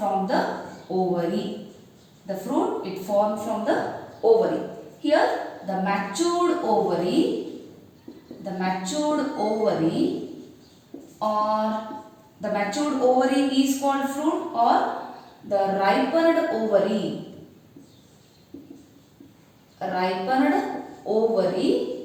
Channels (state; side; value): identical; both; correlation 1.00